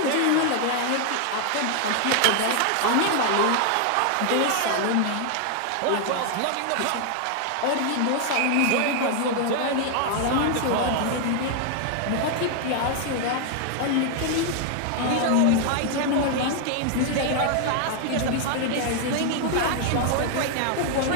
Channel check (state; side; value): different; both; correlation 0.00